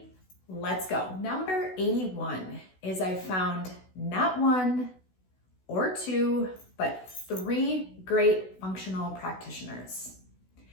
let's go. Number 81 is I found not one or two, but three great functional practitioners.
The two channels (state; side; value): late; right; 16 ms